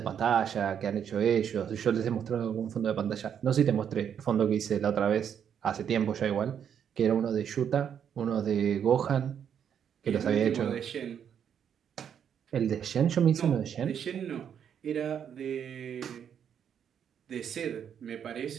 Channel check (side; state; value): left; quieter; 8.4 dB